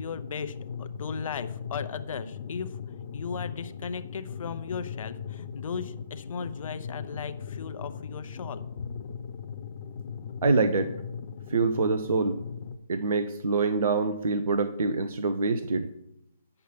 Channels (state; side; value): inverted; both; correlation -0.62